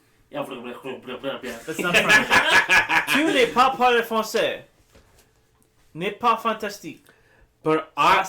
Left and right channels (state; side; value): identical; both; correlation 1.00